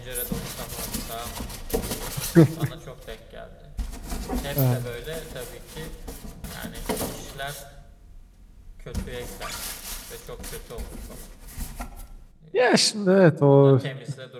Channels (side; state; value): both; identical; correlation 1.00